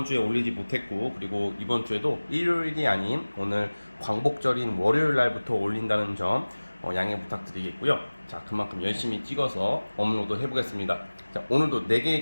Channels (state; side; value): inverted; both; correlation -1.00